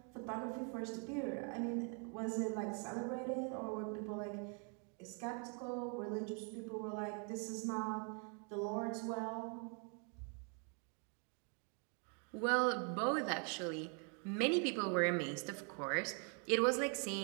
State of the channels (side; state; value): left; quieter; 38.7 dB